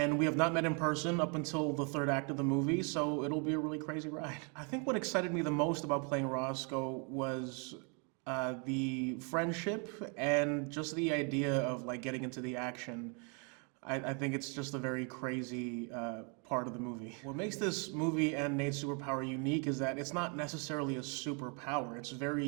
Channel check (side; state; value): left; quieter; 36.1 dB